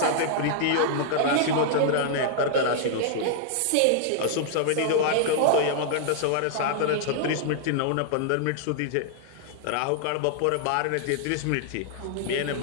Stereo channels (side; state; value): both; different; correlation -0.01